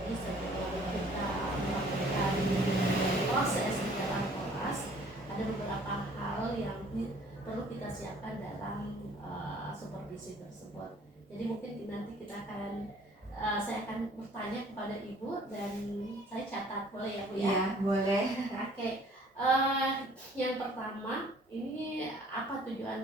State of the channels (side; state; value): both; normal; correlation 0.56